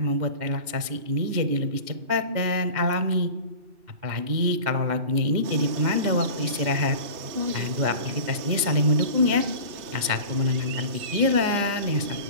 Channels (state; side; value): late; left; 2.1 ms